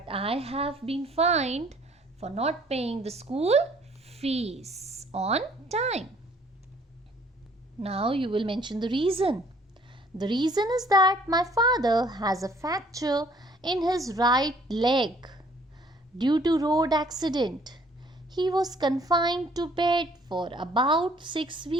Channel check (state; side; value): normal; both; correlation 0.59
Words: I have been fined for not paying the school fees on time. Now you will mention the reason. The reason is that my father has a fracture in his right leg due to road accident. He was confined to bed for about 6